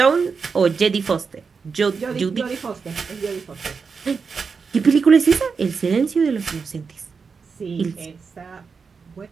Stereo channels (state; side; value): quieter; left; 5.3 dB